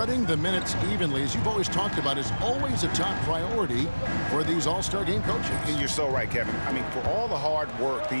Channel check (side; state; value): both; inverted; correlation -1.00